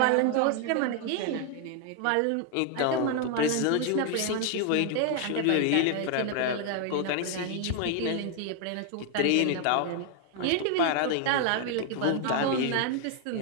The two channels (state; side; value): different; both; correlation 0.00